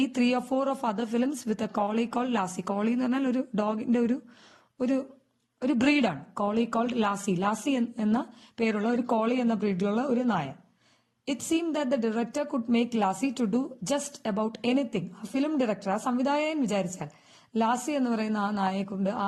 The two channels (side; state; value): both; identical; correlation 1.00